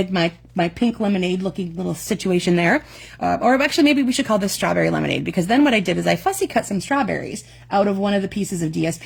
my pink lemonade looking little situation there. Or actually, maybe we should call this Strawberry Lemonade, because then what I did is I fussy cut some strawberries out of one of the pieces of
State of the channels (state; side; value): identical; both; correlation 1.00